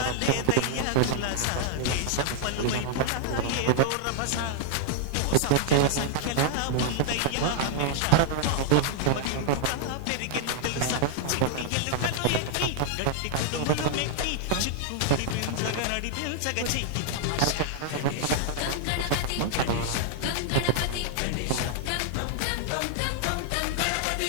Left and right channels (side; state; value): both; different; correlation -0.01